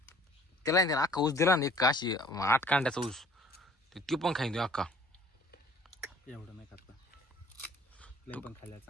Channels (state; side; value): normal; both; correlation 0.53